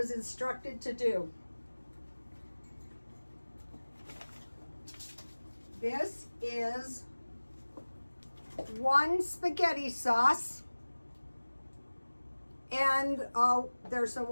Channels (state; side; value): inverted; both; correlation -1.00